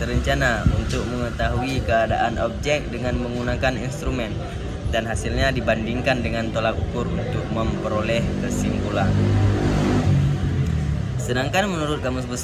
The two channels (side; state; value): both; identical; correlation 1.00